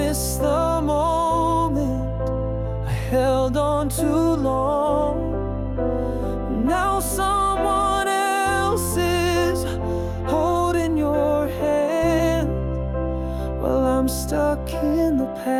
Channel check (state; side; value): identical; both; correlation 1.00